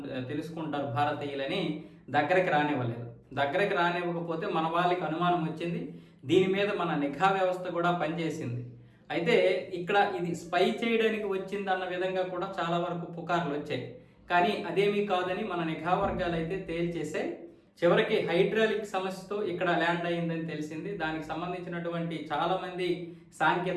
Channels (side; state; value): both; identical; correlation 1.00